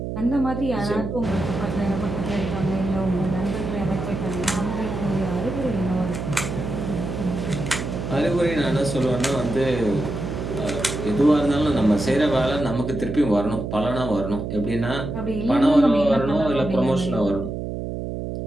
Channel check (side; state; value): right; noise; hum, 5 dB below the sound